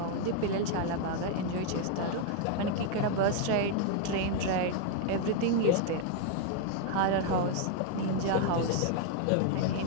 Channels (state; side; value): different; both; correlation 0.00